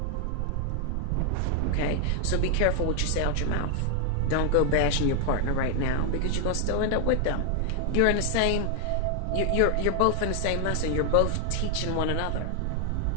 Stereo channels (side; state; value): both; different; correlation 0.00